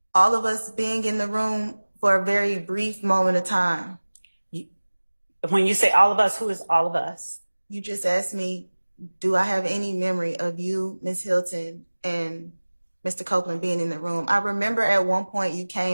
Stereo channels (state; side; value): inverted; both; correlation -1.00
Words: all of us being in the room for a very brief moment of time. When you say all of us, who is all of us? You just asked me, do I have any memory of you, Ms. Hilton, and Mr. Copeland being in the room? I remember at one point you